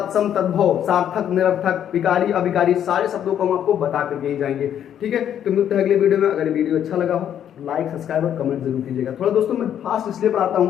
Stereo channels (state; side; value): quieter; right; 9.8 dB